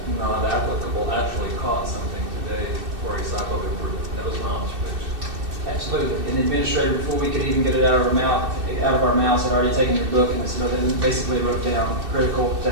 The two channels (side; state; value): left; late; 2.6 ms